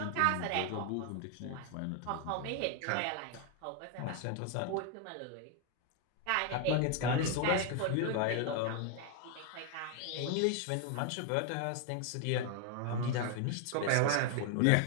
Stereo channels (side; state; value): both; different; correlation 0.00